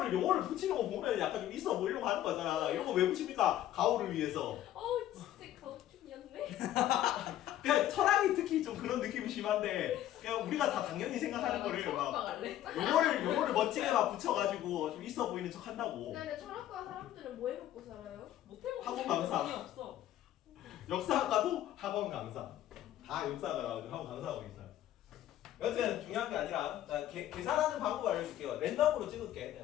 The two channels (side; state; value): right; quieter; 12.6 dB